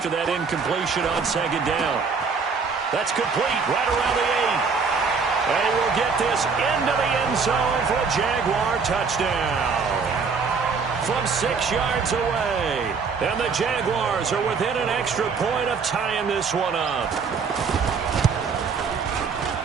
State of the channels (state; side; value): quieter; left; 5.3 dB